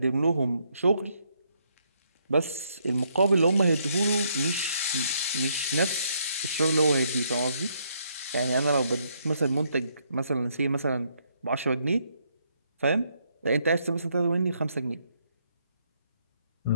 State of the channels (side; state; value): both; inverted; correlation -0.73